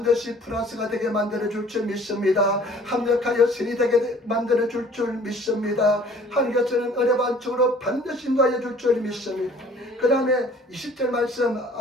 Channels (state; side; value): normal; both; correlation 0.52